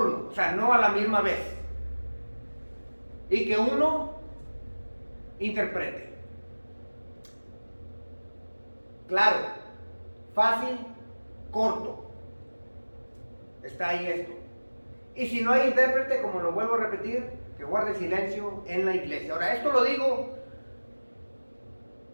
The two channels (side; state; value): both; inverted; correlation -1.00